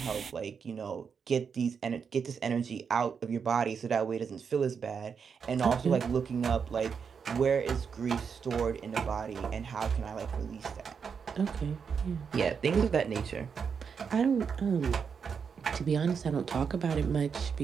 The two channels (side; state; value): left; quieter; 6.3 dB